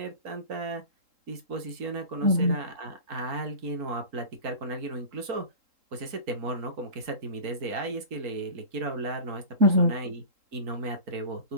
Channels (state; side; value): late; left; 3.7 ms